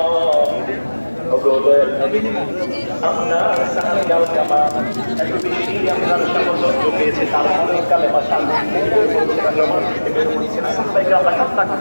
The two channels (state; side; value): inverted; both; correlation -1.00